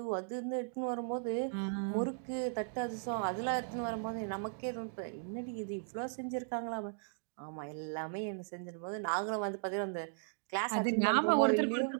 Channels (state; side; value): silent; left; digital silence